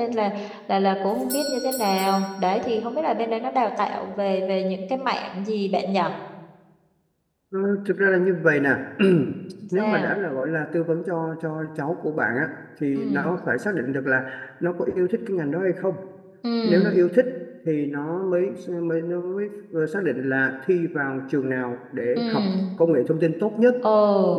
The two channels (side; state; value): both; identical; correlation 1.00